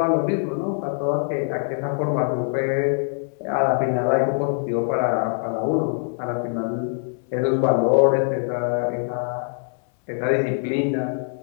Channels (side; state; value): right; silent; 63 dB below the other